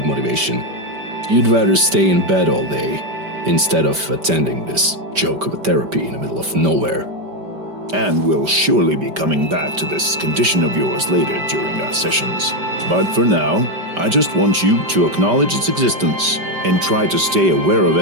motivation. You'd rather stay in bed all day instead of attending this joke of a therapy in the middle of nowhere. And we'll surely be coming back to this condition of yours later during our sessions. But for now, I just want you to acknowledge its existence and try to stay aware of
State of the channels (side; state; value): left; late; 5.2 ms